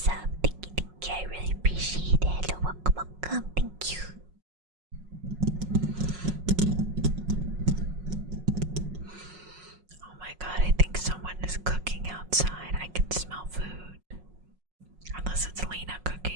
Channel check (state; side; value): late; left; 5.5 ms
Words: Thank you, thank you. I really appreciate it. Hello, welcome, welcome. Thank you. Oh my god, I think someone is cooking outside. I can smell food. Unless it's Lena